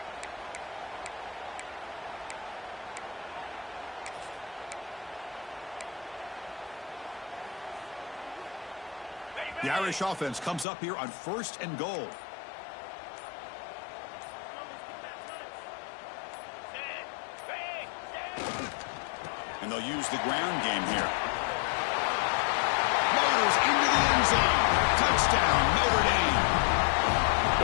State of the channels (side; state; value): right; drops out; at 10.7 s